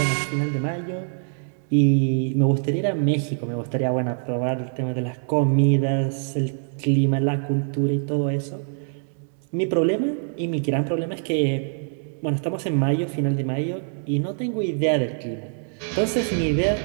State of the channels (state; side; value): silent; left; 63 dB below the other